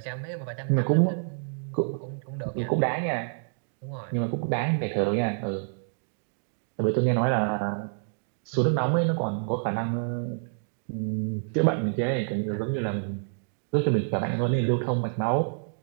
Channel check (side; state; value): left; silent; digital silence